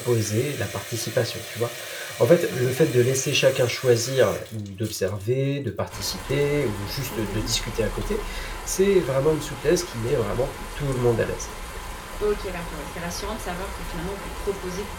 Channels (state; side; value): identical; both; correlation 1.00